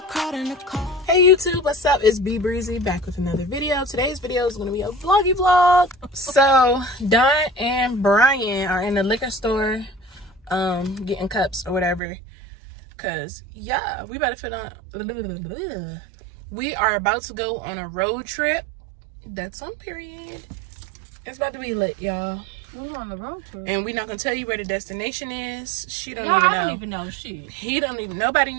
cried in the car. Hey YouTube, what's up? It's B Breezy back with another video. Today's video is going to be a vloggy vlog. So Don and Brian are in the liquor store getting cups or whatever, because yeah, we about to fit on. We are about to go on a road trip. That's on period. It's about to be lit, y'all. We're on the road trip. And we're not gonna tell you where the destination is. She don't Yeah, even know. I don't even know shit. He don't even, nobody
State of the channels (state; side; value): drops out; left; at 12.0 s